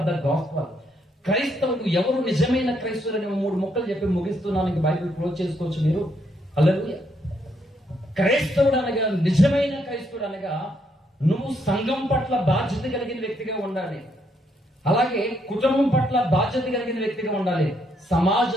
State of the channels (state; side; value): normal; both; correlation 0.74